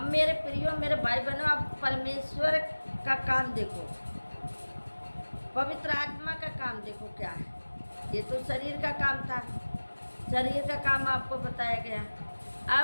मेरे प्रियो, मेरे भाई बहनों, आप परमेश्वर का काम देखो, पवित्र आत्मा का काम देखो क्या है। ये तो शरीर का काम था, शरीर का काम आपको बताया गया।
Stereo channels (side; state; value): both; inverted; correlation -1.00